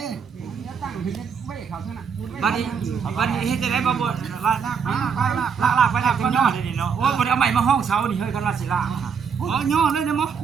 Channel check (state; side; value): quieter; left; 6.4 dB